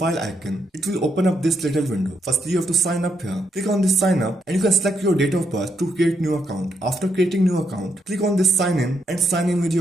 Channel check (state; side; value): normal; both; correlation 0.78